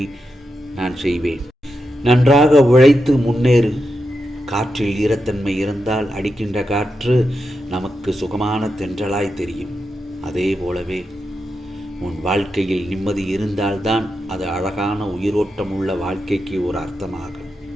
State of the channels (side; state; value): both; normal; correlation 0.87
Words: நான் செய்வேன். நன்றாக உழைத்து முன்னேறு. காற்றில் ஈரத்தன்மை இருந்தால் அடிக்கின்ற காற்று நமக்கு சுகமான தென்றலாய் தெரியும். அதே போலவே உன் வாழ்க்கையில் நிம்மதி இருந்தால்தான் அது அழகான உயிரோட்டம் உள்ள வாழ்க்கைக்கு ஒரு அர்த்தமாகும்.